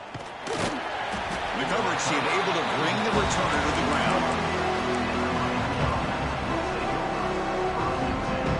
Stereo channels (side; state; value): both; identical; correlation 1.00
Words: The coverage team able to bring the returner to the ground.